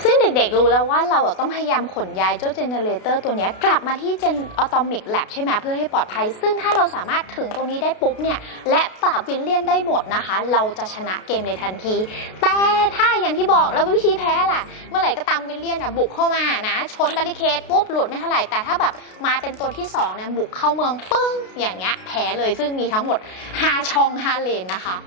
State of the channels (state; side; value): late; right; 33 ms